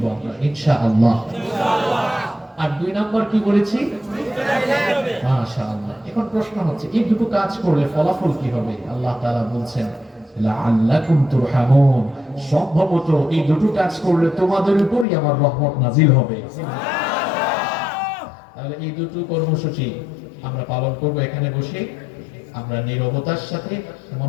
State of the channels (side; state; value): right; drops out; at 15.1 s